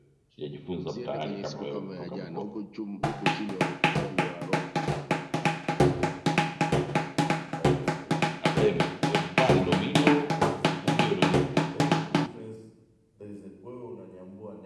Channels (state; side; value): identical; both; correlation 1.00